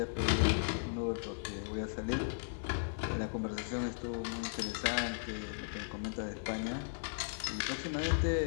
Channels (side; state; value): right; silent; 53 dB below the other